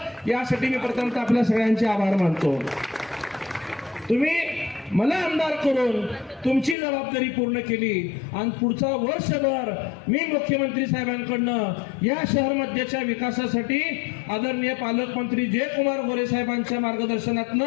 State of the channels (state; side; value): drops out; right; at 6.8 s